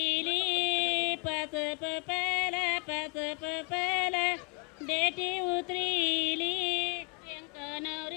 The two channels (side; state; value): right; quieter; 34.0 dB